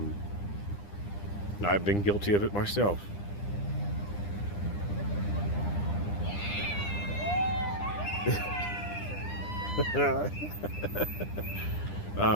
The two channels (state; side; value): late; right; 9.9 ms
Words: been guilty of it myself. But